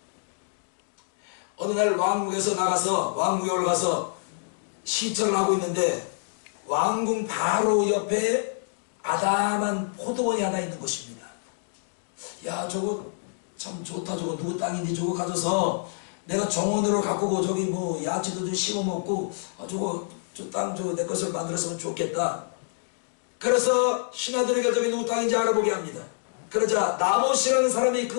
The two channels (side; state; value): right; silent; digital silence